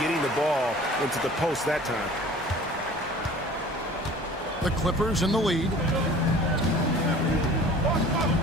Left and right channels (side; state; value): both; normal; correlation 0.46